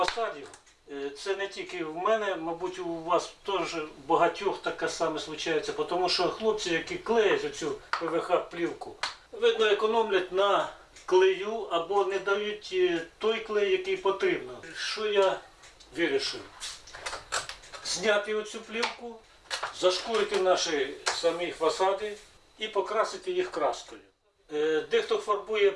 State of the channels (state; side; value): identical; both; correlation 1.00